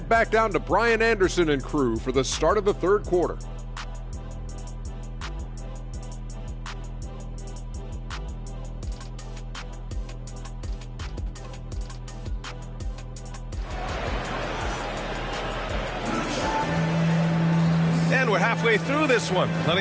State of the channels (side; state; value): both; identical; correlation 1.00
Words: back down to Brian Anderson and crew for the start of the third quarter. And we're halfway through this one.